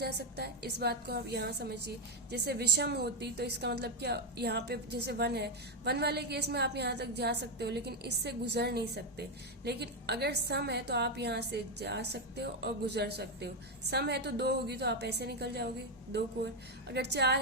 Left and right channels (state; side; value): normal; both; correlation 0.06